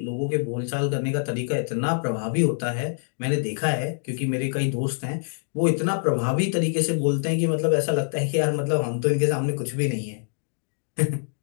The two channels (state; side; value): silent; right; digital silence